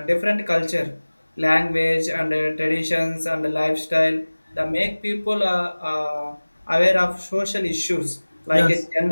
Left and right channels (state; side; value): inverted; both; correlation -1.00